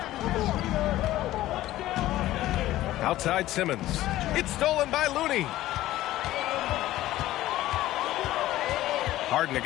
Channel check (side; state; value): right; quieter; 15.2 dB